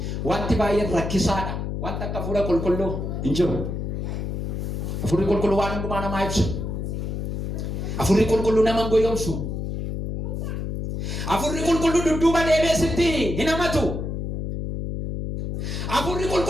Wanti baay'een rakkisaadha. Wanti akka hafuura qulqulluu hin jiru. Hafuurri qulqulluu waan hundumaa namaa ibsu. Hafuurri qulqulluu nama hin goyyoomsu. Hafuurri qulqulluu dudduuba deebee sitti hin hamatu. Hafuurri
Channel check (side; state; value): left; noise; hum, 3 dB below the sound